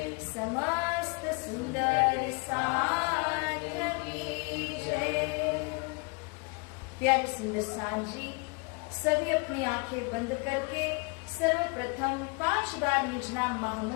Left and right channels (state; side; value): quieter; right; 31.3 dB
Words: समस्त सुंदर साथ की जय। प्यारे सुंदर साथ जी, सभी अपनी आंखें बंद करके सर्वप्रथम 5 बार निज नाम